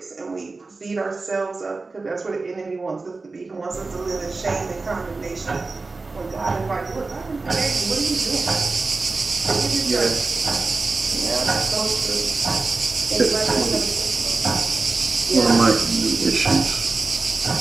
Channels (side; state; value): left; quieter; 3.7 dB